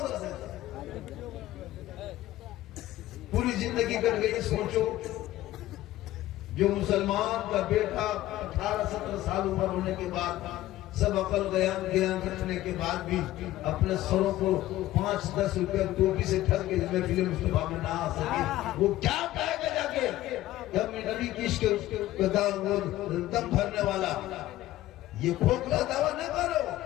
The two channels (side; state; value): right; quieter; 15.2 dB